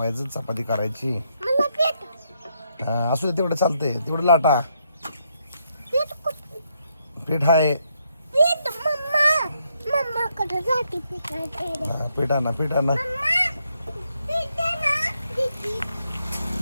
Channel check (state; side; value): inverted; both; correlation -0.77